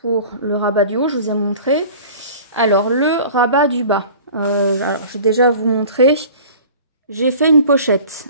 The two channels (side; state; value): both; inverted; correlation -0.43